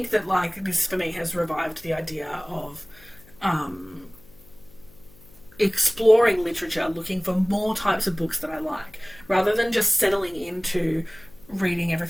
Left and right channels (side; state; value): left; noise; hum, 25 dB below the sound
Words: that, like, this for me has revived the idea of exploring literature, looking for more types of books that I like, rather than just settling into reading